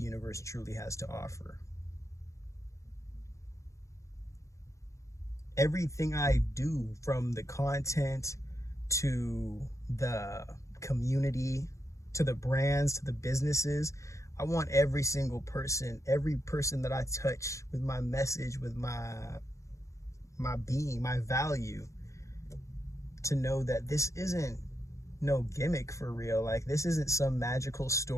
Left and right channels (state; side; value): late; right; 0.15 ms